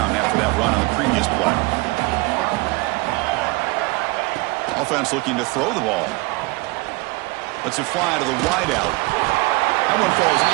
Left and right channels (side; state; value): left; quieter; 24.5 dB